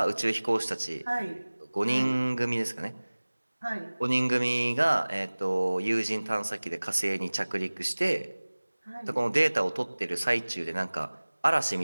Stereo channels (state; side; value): inverted; both; correlation -1.00